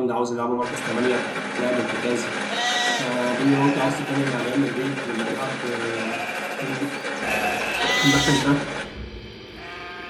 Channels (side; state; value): both; identical; correlation 1.00